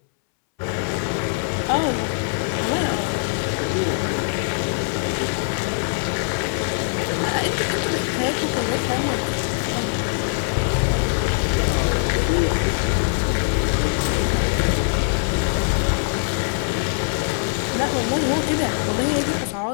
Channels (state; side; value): silent; right; 64 dB below the other